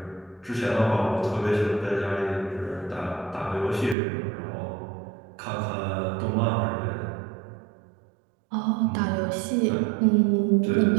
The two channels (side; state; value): left; drops out; at 4.0 s